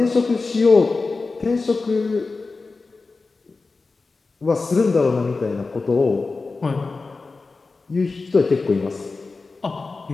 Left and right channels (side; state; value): right; quieter; 3.9 dB